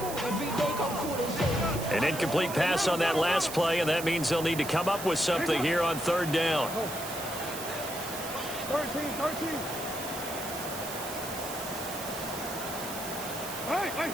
An incomplete pass on that last play, and that means they'll need to come up with something here on 3rd down. 13. Hey.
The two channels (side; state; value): right; noise; hiss, 9 dB below the sound